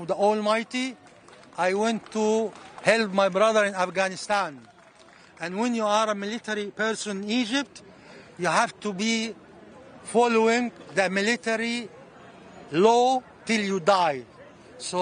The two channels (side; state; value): both; identical; correlation 1.00